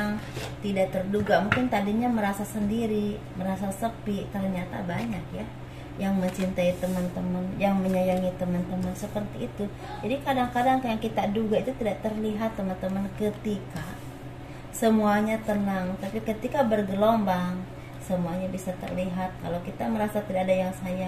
tidak terduga. Mungkin tadinya merasa sendiri, merasa sepi, ternyata banyak ya yang mencintai teman-teman, yang menyayangi teman-teman, seperti itu. Jadi kadang-kadang yang kita duga itu tidak terlihat teman-teman ketika semuanya tenang, tapi ketika bergelombang semuanya bisa terlihat. Kalau kita merasa tidak ada yang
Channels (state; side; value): identical; both; correlation 1.00